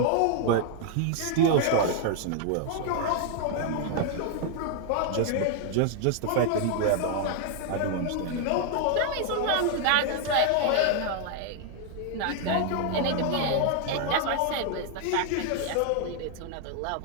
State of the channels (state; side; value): different; both; correlation 0.00